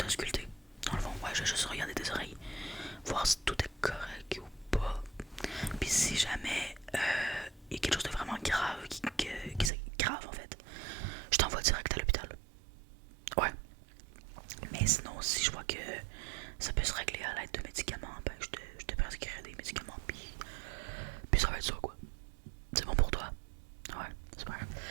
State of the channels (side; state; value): left; drops out; at 9.7 s